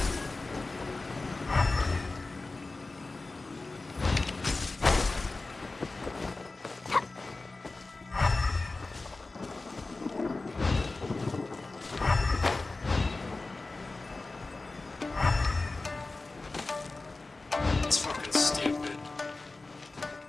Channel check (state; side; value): quieter; right; 3.4 dB